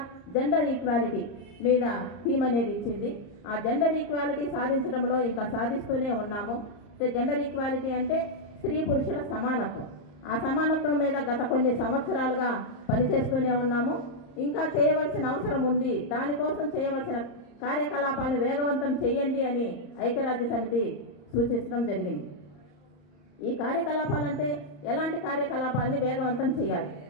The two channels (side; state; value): right; late; 34 ms